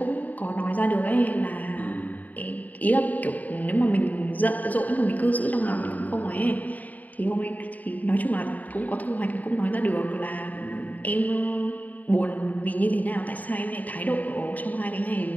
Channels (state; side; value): late; right; 0.077 ms